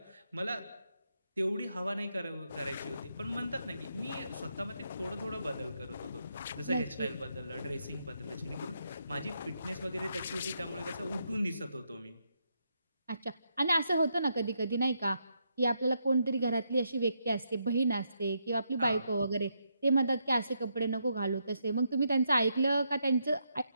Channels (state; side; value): inverted; both; correlation -0.79